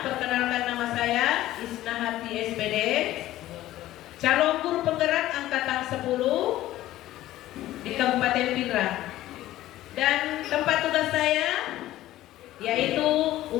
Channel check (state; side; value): quieter; right; 14.9 dB